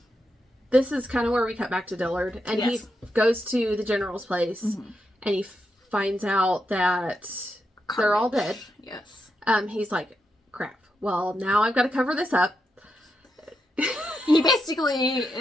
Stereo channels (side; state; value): both; normal; correlation 0.84